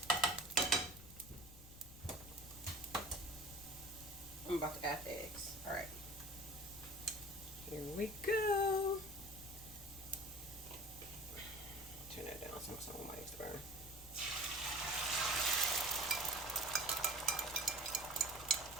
I'm about to add the eggs. All right, here we go. Turn that down so some of my eggs to burn.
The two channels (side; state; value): left; noise; rumble, 16 dB below the sound